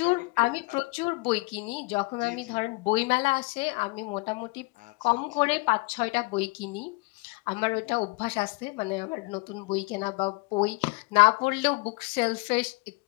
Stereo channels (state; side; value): quieter; right; 27.1 dB